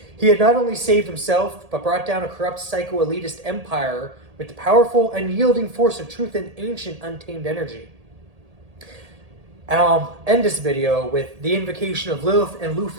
He had not only saved himself, but brought down a corrupt psycho-elitist empire with the powerful, unyielding force of truth and ancient, untamed energy. And I'll end this video with the invocation of Lilith and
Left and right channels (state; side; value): late; left; 1.8 ms